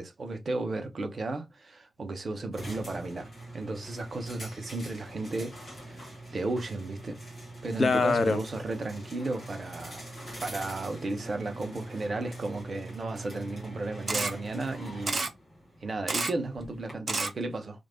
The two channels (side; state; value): both; normal; correlation 0.87